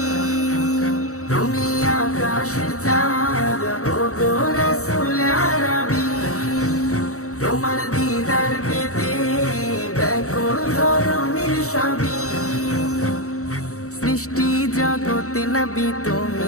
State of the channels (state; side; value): late; right; 0.65 ms